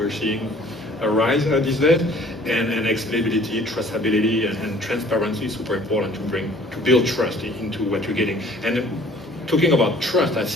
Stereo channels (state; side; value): normal; both; correlation 0.53